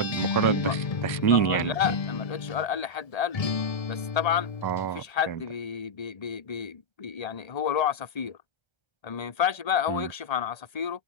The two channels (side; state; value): right; late; 1.3 ms